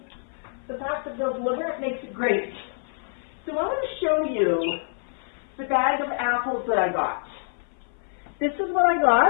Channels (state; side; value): silent; right; 58 dB below the other